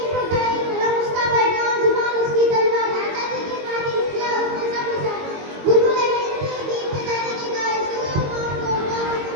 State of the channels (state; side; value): late; left; 22 ms